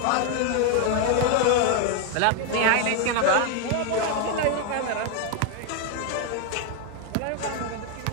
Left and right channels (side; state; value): both; different; correlation 0.01